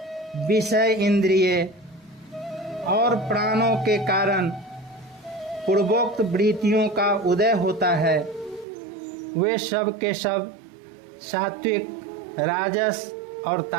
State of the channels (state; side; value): drops out; left; at 8.7 s